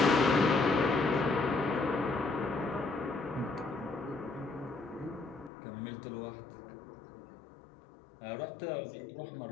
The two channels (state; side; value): drops out; right; at 5.5 s